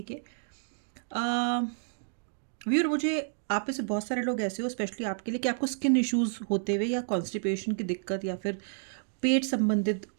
के। व्यूअर, मुझे आप में से बहुत सारे लोग ऐसे हो, स्पेशली आपके लिए, कि आपको स्किन इश्यूज होते हुए या कॉन्स्टिपेशन की दिक्कत या फिर पेट संबंधित,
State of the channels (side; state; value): left; silent; digital silence